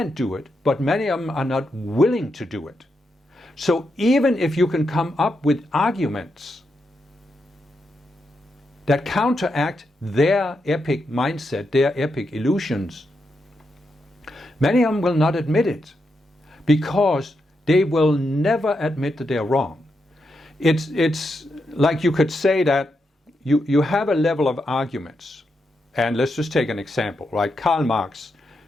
do it, but many of them are not willing to do it. So even if you can come up with arguments that counteract their epic mindset, their epic illusions, many of them will not admit it because They will never admit that they're wrong. It's like you could say that you have a level of arguments. And let's just take an example, right? Karl Marx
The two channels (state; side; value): normal; both; correlation 0.84